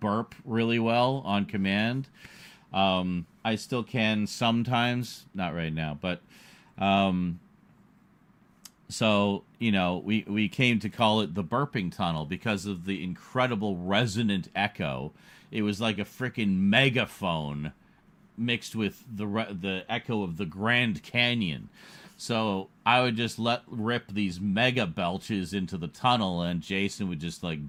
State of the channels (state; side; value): identical; both; correlation 1.00